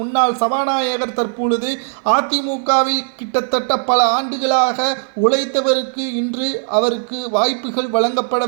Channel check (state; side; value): silent; left; 57 dB below the other